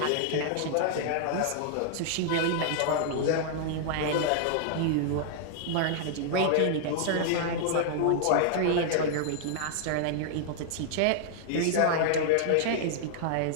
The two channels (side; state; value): both; different; correlation -0.01